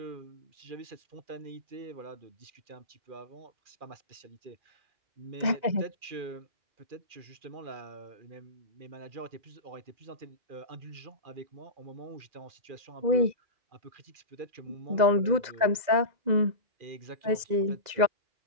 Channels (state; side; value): late; left; 2.0 ms